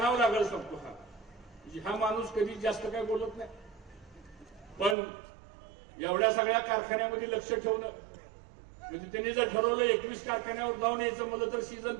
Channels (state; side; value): drops out; left; at 5.0 s